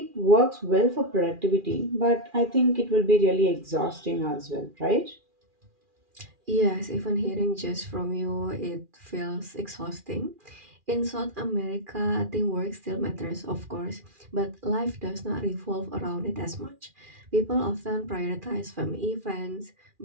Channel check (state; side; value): late; left; 2.4 ms